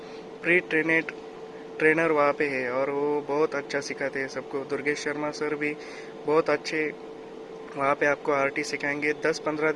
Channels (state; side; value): identical; both; correlation 1.00